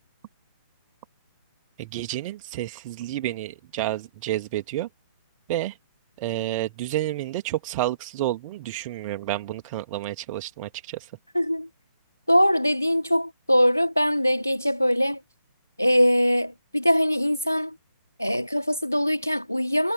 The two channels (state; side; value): inverted; both; correlation -0.85